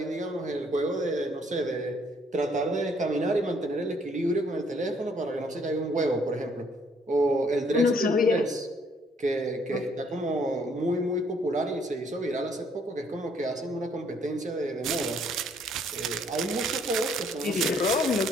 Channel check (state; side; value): normal; both; correlation 0.65